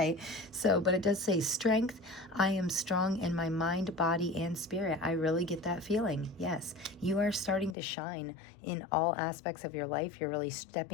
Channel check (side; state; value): right; drops out; at 7.8 s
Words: so, but it does say strength. I am strong in my mind, body, and spirit. I really get that feeling. Yes, you are starting to shine in all aspects of your life. You're really